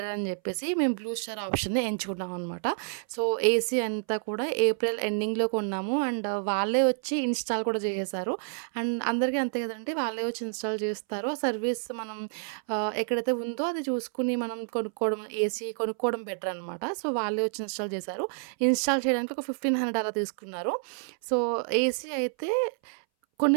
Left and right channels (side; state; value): left; silent; 59 dB below the other